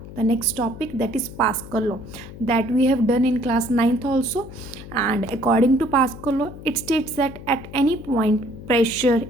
the next topic, that is Pascal law, that we have done in class 9th also. And according to Pascal law, it states that at any point pressure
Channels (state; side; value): noise; left; hum, 14 dB below the sound